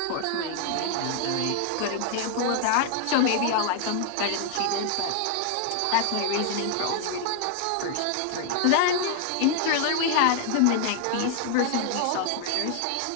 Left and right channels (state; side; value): different; both; correlation 0.00